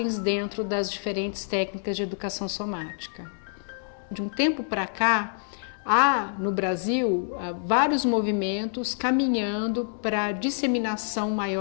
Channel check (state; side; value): silent; right; digital silence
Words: dentro das diferentes técnicas de educação somática. De um tempo para cá, há no Brasil vários movimentos caminhando para a disseminação